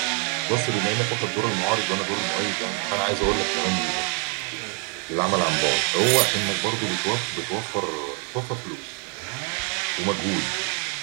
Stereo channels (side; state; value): left; quieter; 37.9 dB